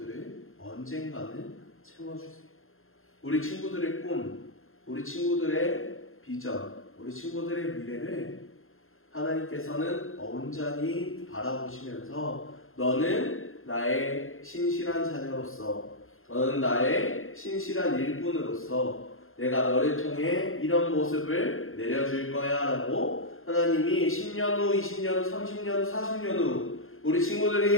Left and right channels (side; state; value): right; late; 0.61 ms